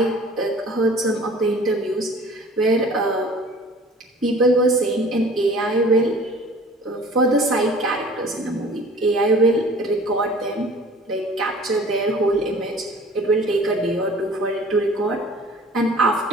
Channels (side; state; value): both; normal; correlation 0.47